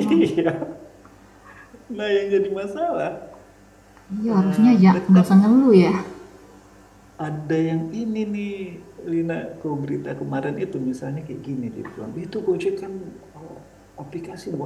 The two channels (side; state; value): both; identical; correlation 1.00